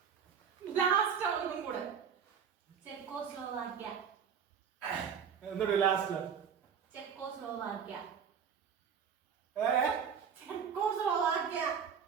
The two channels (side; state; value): left; quieter; 7.3 dB